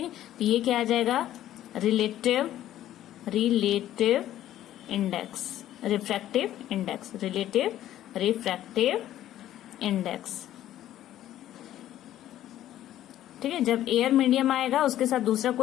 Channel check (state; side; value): quieter; right; 12.7 dB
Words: है, तो ये क्या आ जाएगा, relative index, refractive index, relative refractive index. ठीक है, जब एयर मीडियम आएगा उसके साथ दूसरा